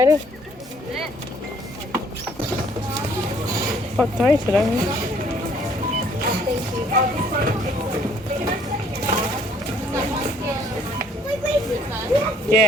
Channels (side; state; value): both; normal; correlation 0.61